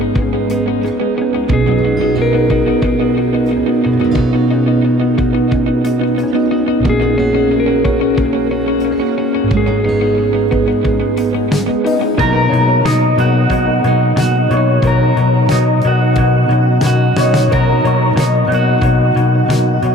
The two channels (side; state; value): both; normal; correlation 0.58